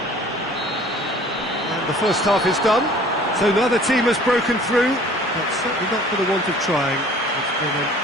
And the first half is done. So now the team has broken through, but certainly not for the want of trying. It's been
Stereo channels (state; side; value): normal; both; correlation 0.50